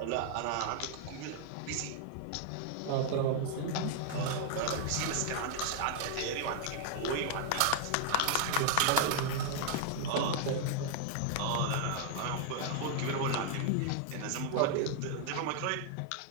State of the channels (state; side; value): different; both; correlation -0.01